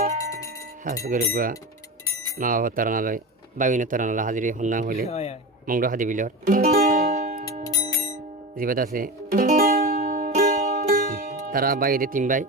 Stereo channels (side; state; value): both; normal; correlation 0.25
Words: হাস গরুয়া মা বাবা তারানালয় বাবিনা তারানালয় হাজিরি হন্না হইলে মংড হাদি বিলর জীবাত আছে তারা বাইরে 3 ভাই